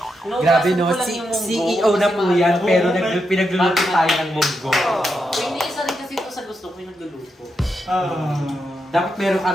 Grabe no, CEO na po yan, pero pinagluluto tayo ng munggo. Hindi isa rin kasi ito sa gusto ko yung nagluluto. Dapat meron ka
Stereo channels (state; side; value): normal; both; correlation 0.84